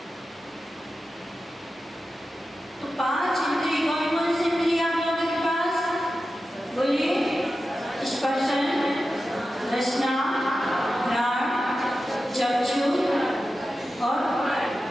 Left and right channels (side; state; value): both; normal; correlation 0.92